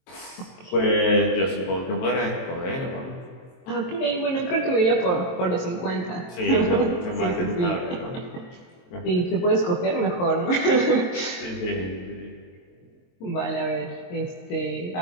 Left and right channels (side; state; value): right; late; 22 ms